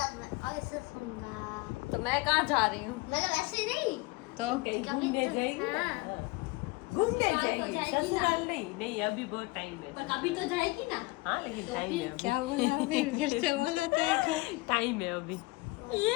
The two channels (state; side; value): quieter; right; 23.4 dB